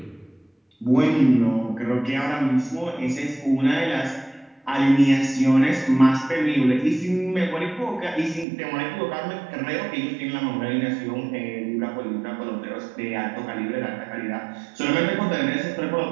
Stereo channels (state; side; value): drops out; left; at 8.5 s